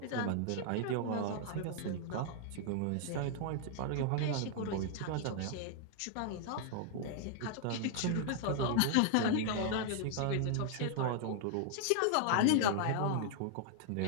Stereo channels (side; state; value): both; different; correlation -0.01